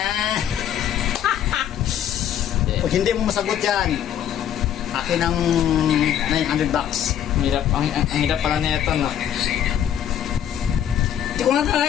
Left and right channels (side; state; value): right; quieter; 10.0 dB